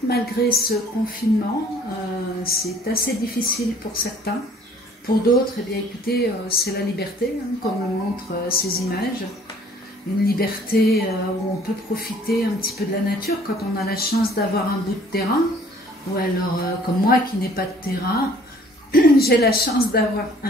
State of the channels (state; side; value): normal; both; correlation 0.55